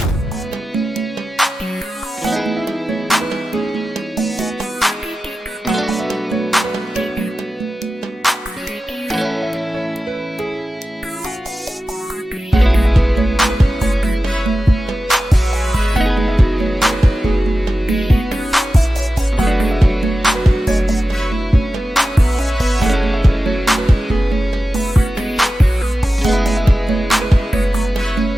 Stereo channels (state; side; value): normal; both; correlation 0.93